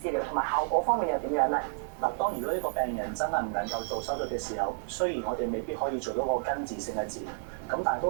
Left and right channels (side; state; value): left; silent; digital silence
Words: 療，同埋效果方面又點樣咧？嗱，當如果呢個病人真係唔能夠做手術嘅時候，雖然我哋未必可以做到個根治性嘅治療，咁但係